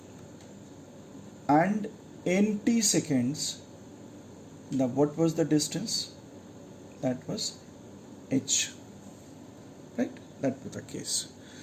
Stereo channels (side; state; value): both; identical; correlation 1.00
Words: and in t seconds, what was the distance? That was H, right? That was the case.